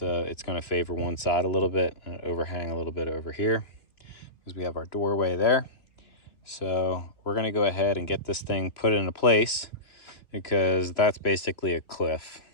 it's going to favor one side a little bit and overhang a little bit over here because we have our doorway there. So we're going to go ahead and get this thing put into place because that's basically a cliff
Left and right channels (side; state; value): right; late; 2.9 ms